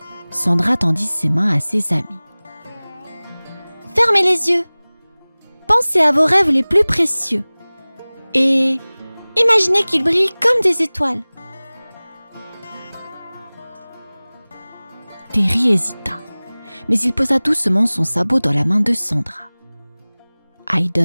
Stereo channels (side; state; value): both; inverted; correlation -1.00